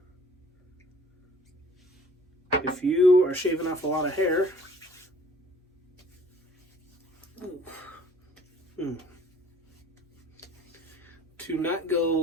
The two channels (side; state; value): both; normal; correlation 0.53